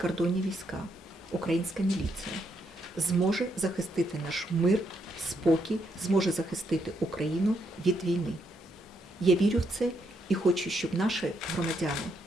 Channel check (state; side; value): normal; both; correlation 0.77